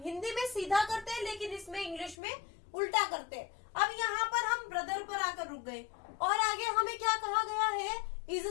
हिंदी में सीधा करते हैं लेकिन इसमें इंग्लिश में उल्टा करते हैं। अब यहाँ पर हम ब्रदर पर आकर रुक गए, और आगे हमें क्या कहा गया है, इज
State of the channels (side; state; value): right; drops out; at 2.1 s